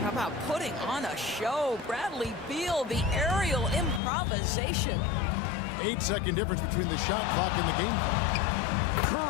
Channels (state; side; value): drops out; right; at 4.0 s